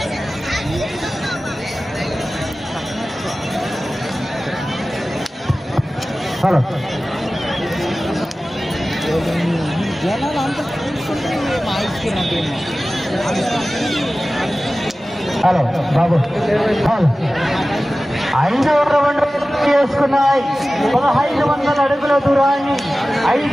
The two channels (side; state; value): both; normal; correlation 0.96